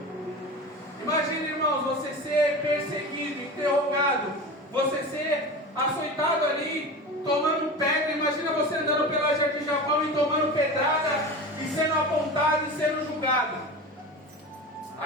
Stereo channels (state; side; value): normal; both; correlation 0.30